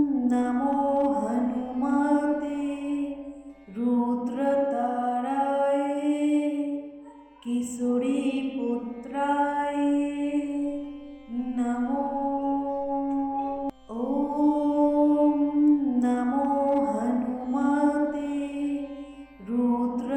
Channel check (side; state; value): both; identical; correlation 1.00